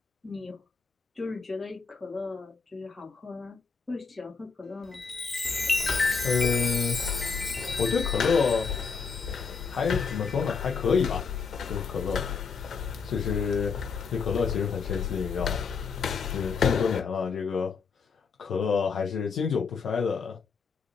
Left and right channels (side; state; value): right; quieter; 5.3 dB